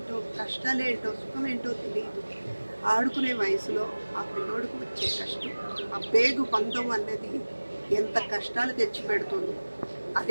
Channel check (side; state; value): both; inverted; correlation -1.00